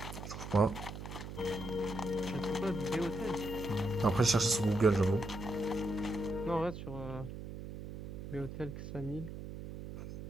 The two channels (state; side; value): noise; right; hum, 9 dB below the sound